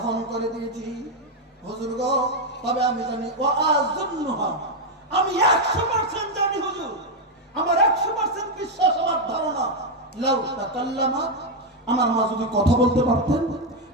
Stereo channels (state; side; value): normal; both; correlation 0.03